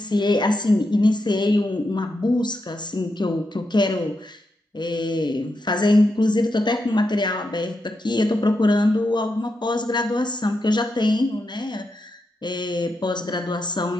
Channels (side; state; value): both; normal; correlation 0.85